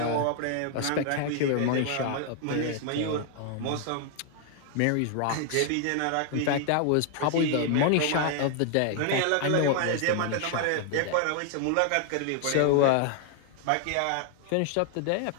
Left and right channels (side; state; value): both; different; correlation 0.00